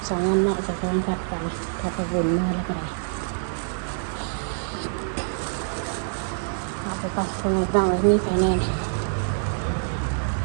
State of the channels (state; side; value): silent; left; digital silence